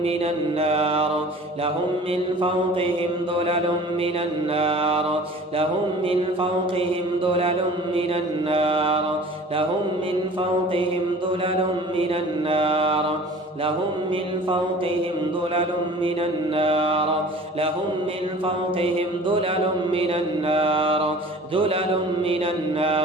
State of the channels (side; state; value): both; normal; correlation 0.44